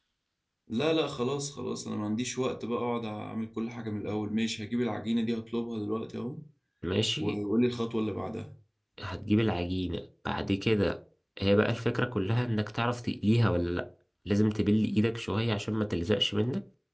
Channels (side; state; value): both; identical; correlation 1.00